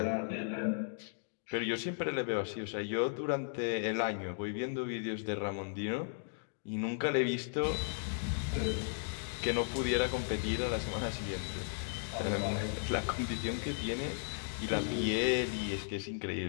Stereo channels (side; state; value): right; silent; digital silence